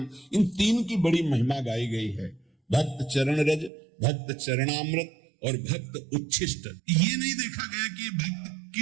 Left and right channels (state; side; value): drops out; left; at 3.7 s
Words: इन तीन की बड़ी महिमा गाई गई है। भक्त चरण रज, भक्त चरणामृत और भक्त उच्छिष्ट। ये नहीं देखा गया कि भक्त